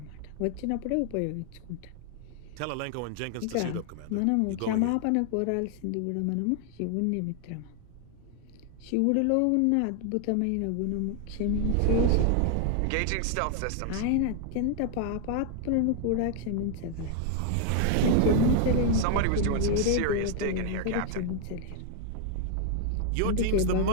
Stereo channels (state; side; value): different; both; correlation 0.00